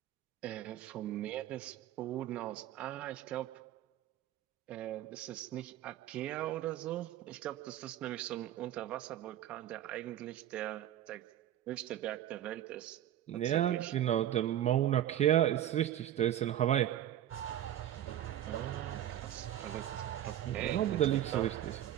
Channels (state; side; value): quieter; left; 11.9 dB